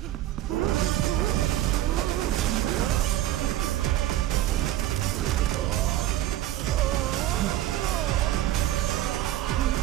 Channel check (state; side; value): quieter; left; 13.8 dB